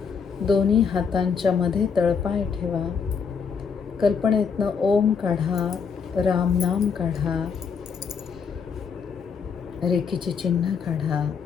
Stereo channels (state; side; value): quieter; right; 6.1 dB